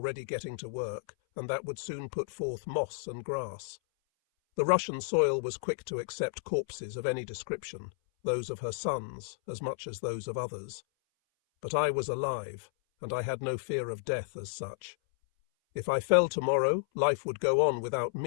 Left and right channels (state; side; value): silent; right; 56 dB below the other